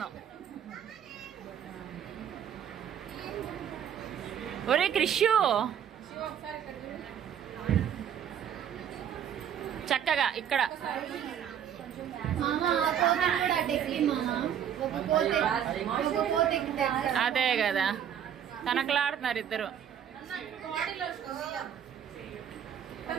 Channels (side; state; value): left; quieter; 9.1 dB